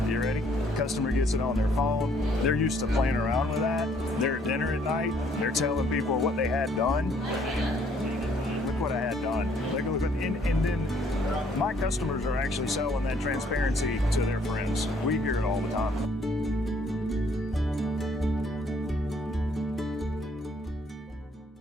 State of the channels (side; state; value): both; normal; correlation 0.64